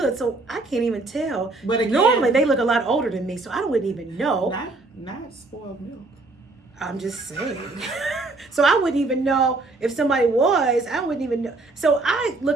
so I can't even tell. But again, normally they look a lot older than me, so I wouldn't even know. Not spoiled milk. I'm just saying. So I wouldn't even know if somebody was. I wouldn't even know. So I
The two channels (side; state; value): left; quieter; 3.3 dB